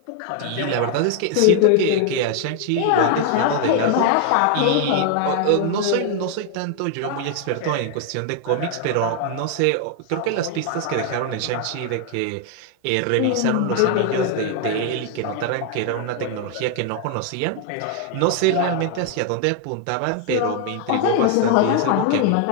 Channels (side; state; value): both; different; correlation 0.00